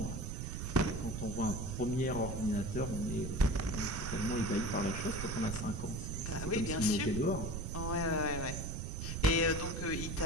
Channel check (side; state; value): right; noise; rumble, 4 dB below the sound